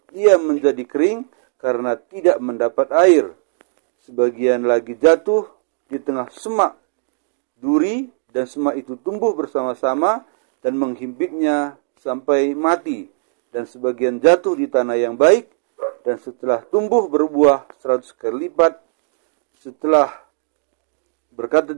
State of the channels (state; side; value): silent; left; digital silence